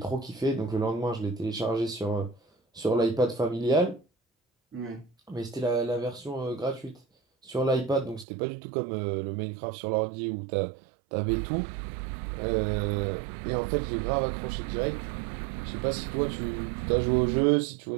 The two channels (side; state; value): left; drops out; at 8.2 s